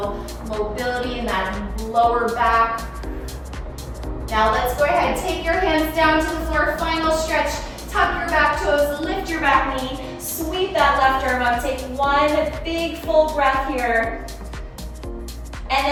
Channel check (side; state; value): both; identical; correlation 1.00